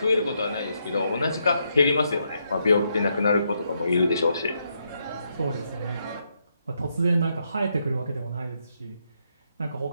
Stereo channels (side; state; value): both; inverted; correlation -0.79